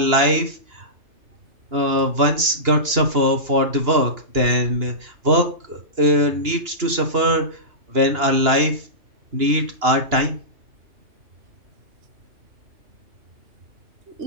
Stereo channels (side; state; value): left; late; 2.9 ms